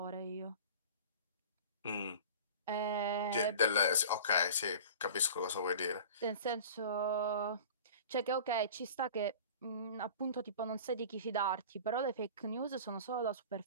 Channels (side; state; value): both; inverted; correlation -0.39